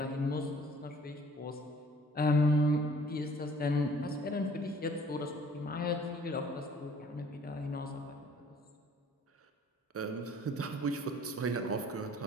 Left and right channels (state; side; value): normal; both; correlation 0.55